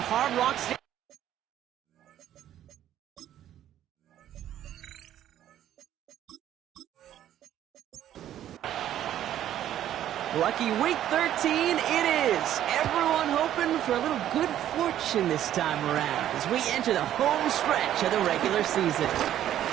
Rock Stadium. Lucky week 13 it is. Everyone hoping for a little good fortune this time around as we enter the home stretch of the regular season.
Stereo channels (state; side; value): quieter; left; 11.6 dB